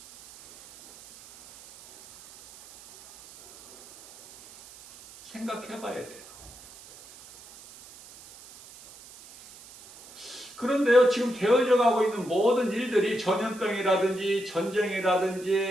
생각해 봐야 돼요. 그런데요, 지금 되어져 가고 있는 모든 일들이 전염병이라든지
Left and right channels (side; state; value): right; noise; hiss, 20 dB below the sound